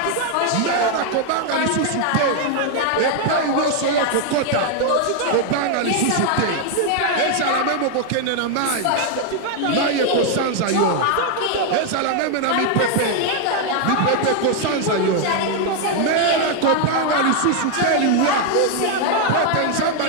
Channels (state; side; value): different; both; correlation 0.00